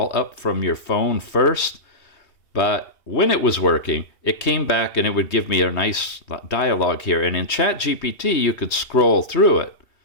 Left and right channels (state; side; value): late; right; 3.2 ms